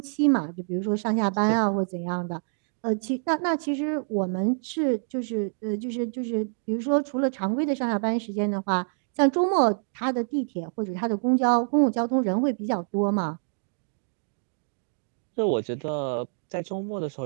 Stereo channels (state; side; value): silent; left; digital silence